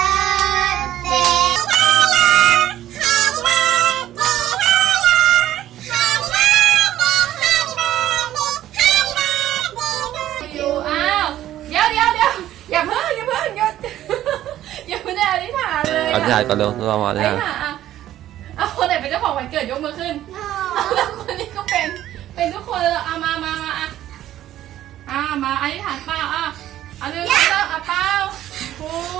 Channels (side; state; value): left; quieter; 12.9 dB